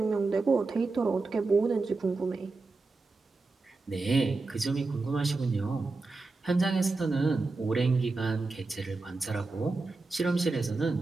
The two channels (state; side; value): quieter; left; 3.7 dB